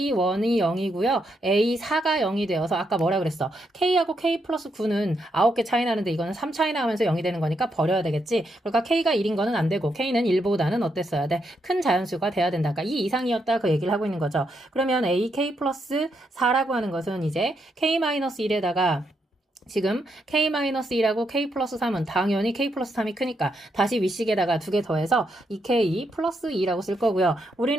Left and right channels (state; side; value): normal; both; correlation 0.79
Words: 0이고요. A4가 0이 되어서 아까 뭐라 그랬어? K하고 K 플러스 9는 9개 차이 나는데 이거는 3 차이 나면서 0이 되는 거니까 버려야 되겠지. 그러니까 K가 1인 거는 안 되고 K는 1보다는 어땠어야 돼? 큰 자연수가 돼야 된다. 그러니까 이 이상이었다 그 얘기를 하고 있는 거죠. 그러면 AK 플러스 4라고 하는 것은 이제 K-1에다가 지금 K-1하고 K 플러스 3은 당연히 K 플러스 3이 크니까 다시 윗식에다가 두 개 더해서 2K 플러스 2라고 쓸 거고요.